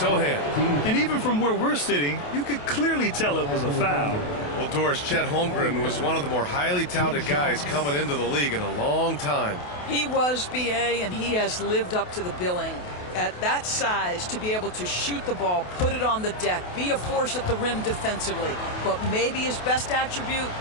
And even from where we're sitting, you could clearly tell it was a foul. Well, Doris, Chet Holmgren was one of the more highly touted guys coming into the league in a long time. He was, BA, and he has lived up to the billing. At that size, to be able to shoot the ball, put it on the deck, be a force at the rim defensively. But maybe his best attribute,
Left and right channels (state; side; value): late; right; 28 ms